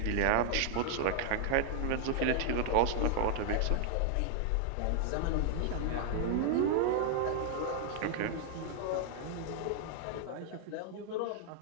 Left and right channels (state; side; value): different; both; correlation 0.00